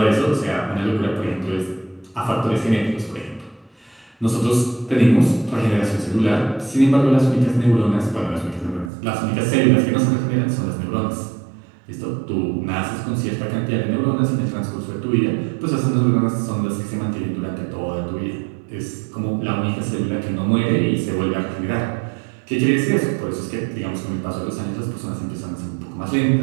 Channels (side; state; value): left; drops out; at 8.9 s